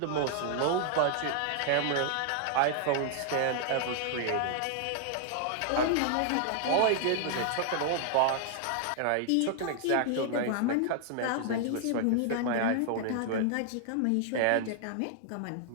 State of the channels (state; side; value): different; both; correlation 0.00